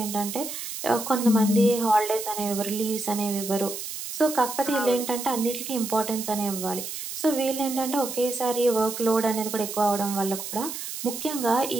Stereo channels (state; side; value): noise; right; hiss, 7 dB below the sound